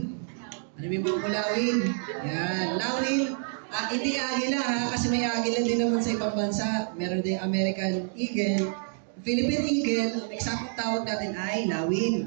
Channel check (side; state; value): left; silent; 59 dB below the other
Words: Ano yung mga Lawin? Yan, Lawin. Hindi agila ha, kasi may agila din naman sa ibang bansa. Meron din American Eagle. Philippine Eagle, ang eksaktong tawag natin ay